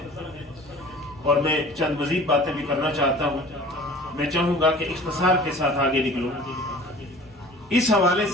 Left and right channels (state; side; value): normal; both; correlation 0.45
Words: اور میں چند مزید باتیں بھی کرنا چاہتا ہوں. میں چاہوں گا کہ اختصار کے ساتھ آگے نکلوں. اس حوالے